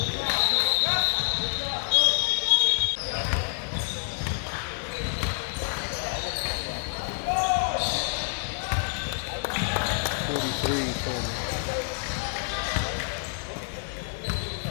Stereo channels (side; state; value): right; silent; 60 dB below the other